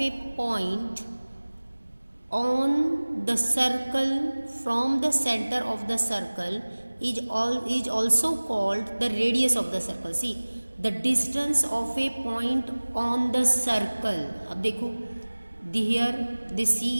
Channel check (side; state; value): both; inverted; correlation -1.00